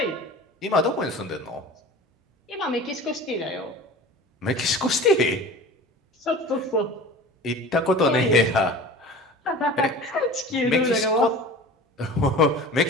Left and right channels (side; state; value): both; normal; correlation 0.38